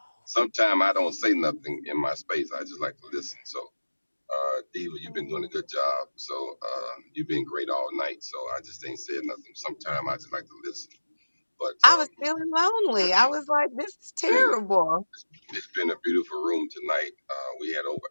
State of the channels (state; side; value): inverted; both; correlation -1.00